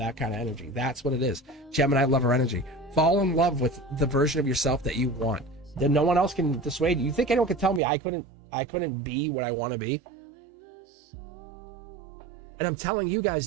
kind of energy. That's what it is. Gemini lover energy. Fall in love with the version of yourself that you want. Then no one else can dissuade you. You think anyone could tell me I couldn't be what I want to be? And I'm telling you guys,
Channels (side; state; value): left; drops out; at 7.8 s